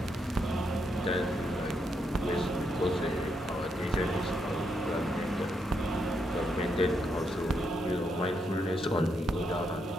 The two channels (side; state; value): both; normal; correlation 0.79